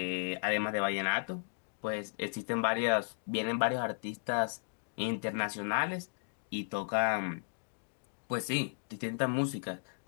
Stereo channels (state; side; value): silent; right; digital silence